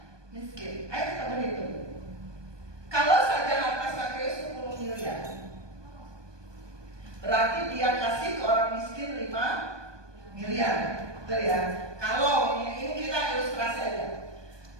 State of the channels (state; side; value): late; left; 1.2 ms